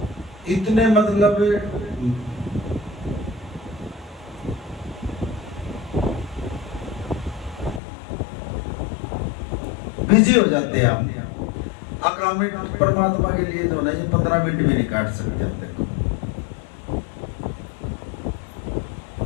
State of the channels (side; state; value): right; drops out; at 7.8 s